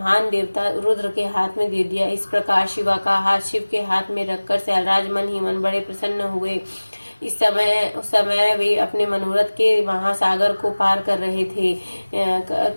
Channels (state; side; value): inverted; both; correlation -1.00